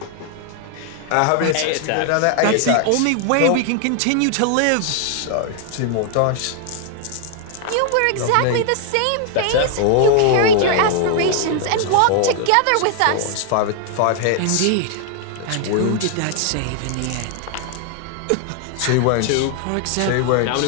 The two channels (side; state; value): both; different; correlation 0.00